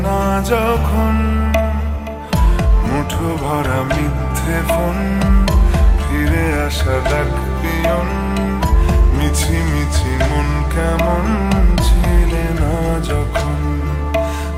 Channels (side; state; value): both; identical; correlation 1.00